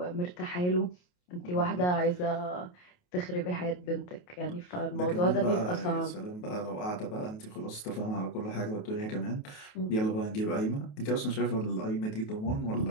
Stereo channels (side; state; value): right; late; 28 ms